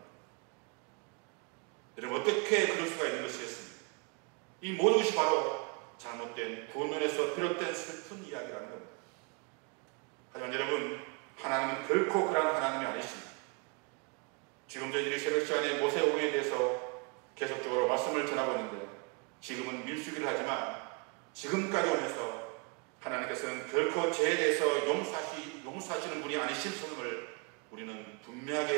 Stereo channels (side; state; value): left; quieter; 31.8 dB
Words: 여러분, 어떻게 그럴 수가 있는 것이겠습니까? 이 모든 것이 바로 잘못된 구원론에서 비롯된 슬픈 이야기라는 겁니다. 하지만 여러분, 하나님은 결코 그러한 하나님이 아니십니다. 지금 저희들이 새벽 시간에 모세오경에 대해서 계속적으로 말씀을 전하고 있는데, 지금은 밀수기를 하지만 지금까지 오면서 하나님께서는 결코 죄에 대해서 용서하시는 분이 아니신 것을 우리는